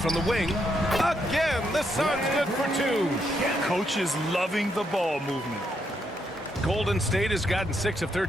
the wing. Again, the Suns good for 2. Coach is loving the ball movement. Golden State has gotten 6 of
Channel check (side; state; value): both; normal; correlation 0.78